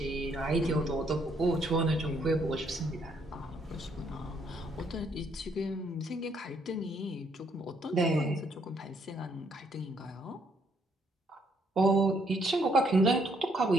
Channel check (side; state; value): both; normal; correlation 0.70